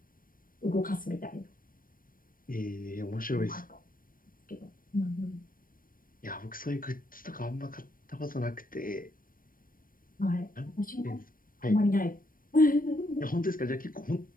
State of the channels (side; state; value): right; late; 0.41 ms